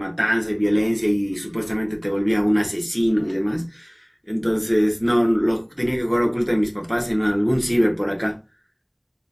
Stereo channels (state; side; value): identical; both; correlation 1.00